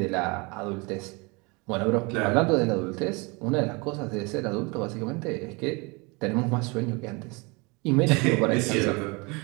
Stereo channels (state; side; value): quieter; left; 28.2 dB